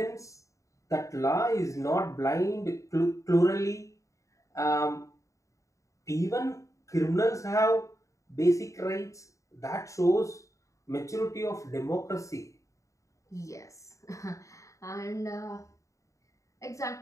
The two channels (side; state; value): right; late; 0.15 ms